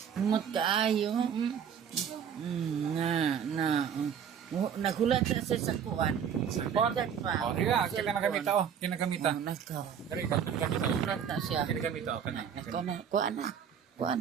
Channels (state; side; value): quieter; left; 8.1 dB